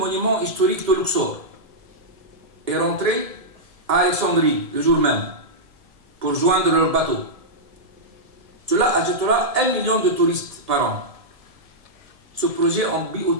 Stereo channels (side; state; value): left; late; 1.7 ms